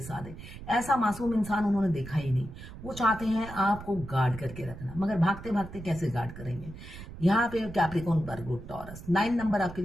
ऐसा मासूम इंसान उन्होंने देखा ही नहीं। वो चाहते हैं आपको गार्ड करके रखना, मगर भागते भागते कैसे गार्ड करेंगे। यहाँ पे कैप्रिकॉर्न, वर्गो, टॉरस 9 नंबर आपके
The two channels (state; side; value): noise; right; rumble, 13 dB below the sound